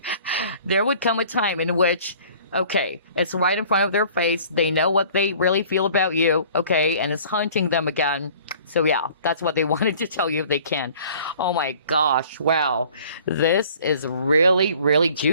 there would come a time in which, okay, it's right in front of their face. They know what they really feel about you, okay, and it's haunting them again. So yeah, that's what they wanted to tell you if they can. Oh my gosh, wow. This is really, really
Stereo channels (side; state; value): both; inverted; correlation -0.51